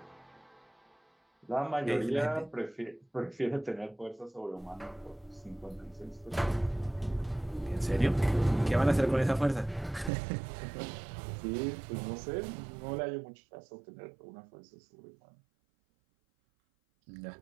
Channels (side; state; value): left; drops out; at 10.1 s